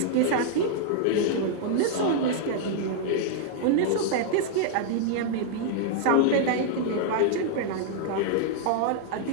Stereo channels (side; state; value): both; different; correlation -0.01